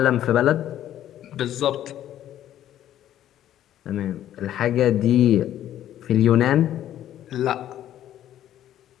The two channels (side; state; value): right; quieter; 11.8 dB